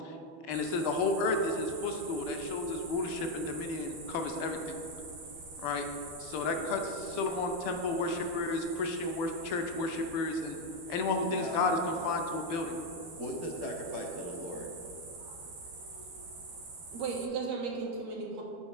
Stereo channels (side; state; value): left; late; 12 ms